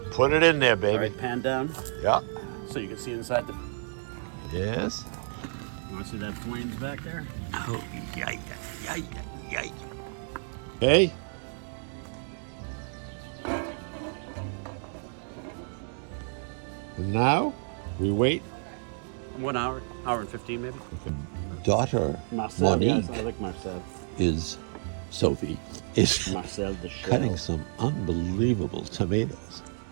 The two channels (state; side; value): silent; left; 58 dB below the other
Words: Put it in there, All baby. right, pan down Yeah. so you can see inside the. Yes. You want to see that flames back there? Oh, yay. Hey. And now we wait. 1 hour, hour and 15 maybe. Daughter Marcel, yes, Monique I like Marcel. Sophie is Marcel the Shell. cutting some unbelievable tomatoes.